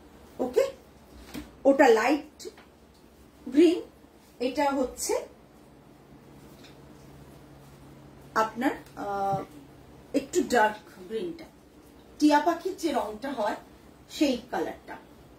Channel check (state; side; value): identical; both; correlation 1.00